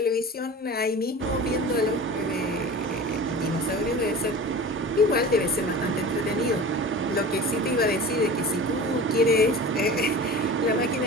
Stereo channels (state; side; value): normal; both; correlation 0.36